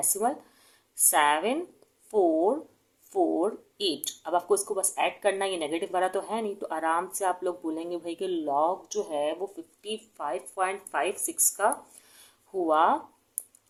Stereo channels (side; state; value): both; identical; correlation 1.00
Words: 7448। अब आपको इसको बस ऐड करना है, ये नेगेटिव वाला तो है नहीं तो आराम से आप लोग बोलेंगे भाई कि लॉग जो है वो 55.56 का हुआ।